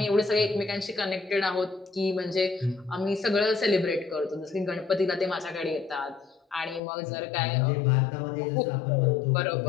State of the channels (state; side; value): drops out; right; at 6.8 s